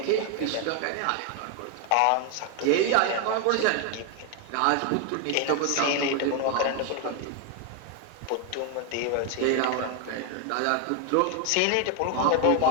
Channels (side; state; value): both; different; correlation 0.01